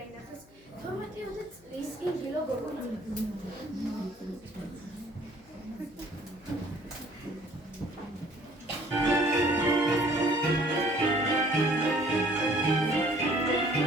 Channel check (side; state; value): left; noise; hum, 26 dB below the sound